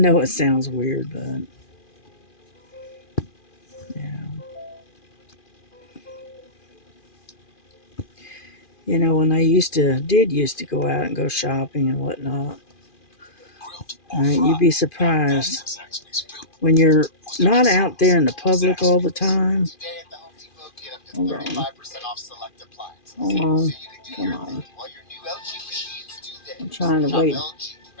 it sounds weird, but yeah. You know, when I used to go out and go shopping and whatnot, you'd be surprised when you're not out there in the public all the time. Hold on. Hold on. Come on. I'm trying to wait.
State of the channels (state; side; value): late; right; 2.5 ms